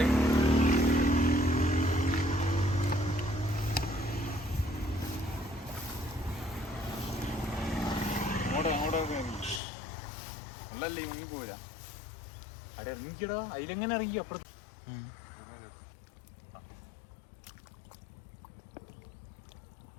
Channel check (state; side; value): drops out; right; at 9.6 s